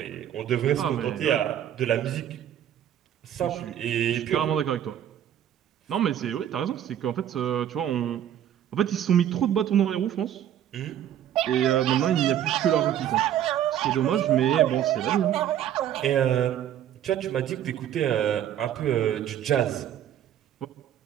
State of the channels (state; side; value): quieter; left; 10.6 dB